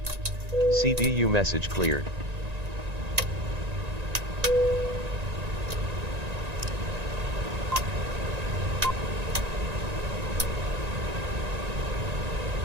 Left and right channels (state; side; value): late; left; 1.9 ms